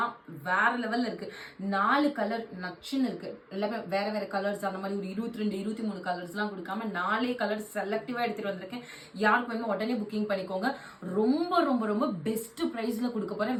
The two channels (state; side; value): identical; both; correlation 1.00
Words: வேற லெவல்ல இருக்கு. 4 கலர் நச்சுன்னு இருக்கு. எல்லாமே வேற வேற கலர்ஸ், அந்த மாதிரி ஒரு 22 23 கலர்ஸ்லாம் கொடுக்காம 4 கலர் செலக்டிவா எடுத்துட்டு வந்திருக்கேன். யாருக்கு வேணுமோ உடனே புக்கிங் பண்ணிக்கோங்க. ரொம்ப ரொம்ப ரொம்ப பெஸ்ட் பிரைஸ்ல கொடுக்க